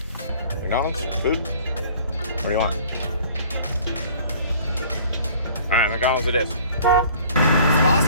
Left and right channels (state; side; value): inverted; both; correlation -0.51